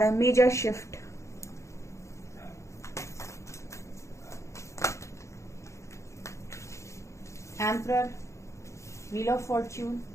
है, major shift. Emperor, wheel of fortune,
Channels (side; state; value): right; late; 0.14 ms